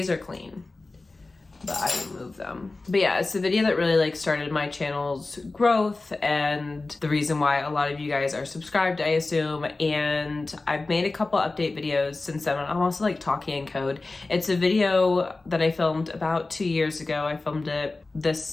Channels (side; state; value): right; quieter; 3.4 dB